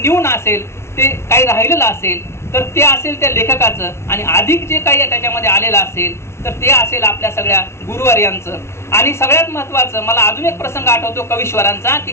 असेल ते काही राहिलेलं असेल तर ते असेल त्या लेखकाचं, आणि अधिक जे काही त्याच्यामध्ये आलेलं असेल तर ते असेल आपल्या सगळ्या गुरुवर्यांचं. आणि सगळ्यात महत्त्वाचं मला अजून एक प्रसंग आठवतो कवीश्वरांचा, की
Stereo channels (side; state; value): right; late; 0.13 ms